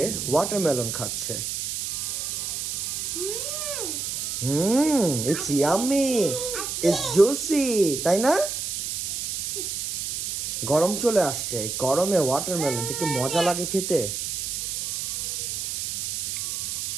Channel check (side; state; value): right; noise; hiss, 3 dB below the sound